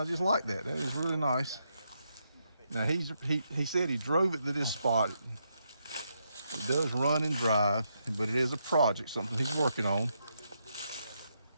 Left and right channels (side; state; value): both; inverted; correlation -0.80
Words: just like that. That is really nice. Now he said he drove it to this spot. It does run and drive, but it is a project, something he's working on.